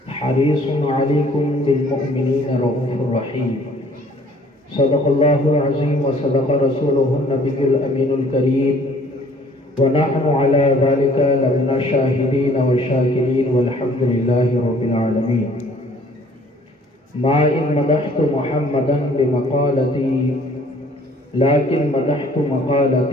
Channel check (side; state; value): both; normal; correlation 0.57